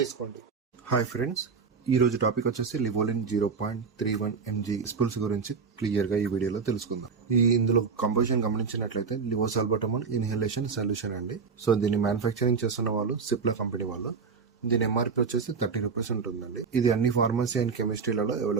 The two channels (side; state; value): left; quieter; 5.4 dB